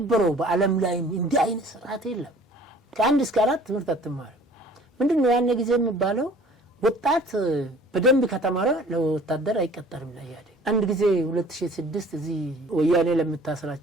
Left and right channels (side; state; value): both; normal; correlation 0.50